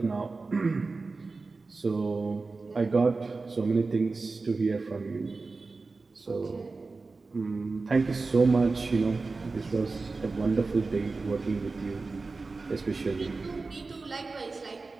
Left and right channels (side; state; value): left; quieter; 3.9 dB